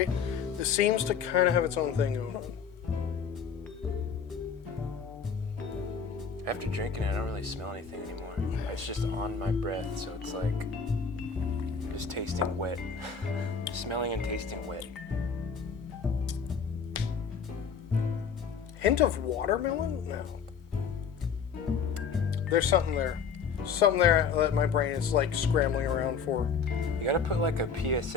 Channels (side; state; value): right; quieter; 6.2 dB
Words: This seems to kind of have its own thing going on. After drinking it, I don't really smell anything anymore. It's just on my breath, so it's like just tasting wet. Smelling and tasting wet. Hint of watermelon? No. There's something there. Something there that my brain is like scrambling around for. You gotta put like a